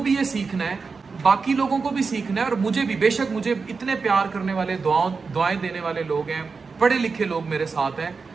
ये सीखना है, बाकी लोगों को भी सीखना है और मुझे भी। बेशक मुझे इतने प्यार करने वाले, दुआएं देने वाले लोग हैं, पढ़े लिखे लोग मेरे साथ हैं,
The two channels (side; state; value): left; quieter; 4.8 dB